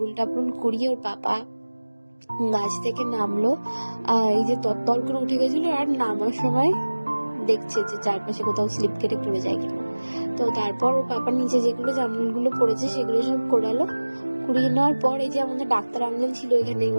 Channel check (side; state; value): both; inverted; correlation -1.00